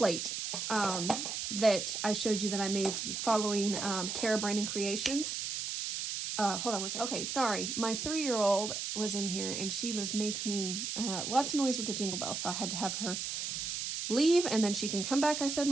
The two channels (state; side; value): noise; right; hiss, 3 dB below the sound